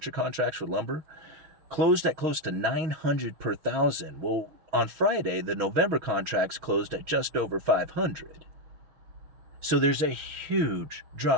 contracts for lumber closed at close to 900 per thousand. Well, on Friday, the November contracts closed at just over 500. So there's a huge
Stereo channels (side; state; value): left; late; 6.3 ms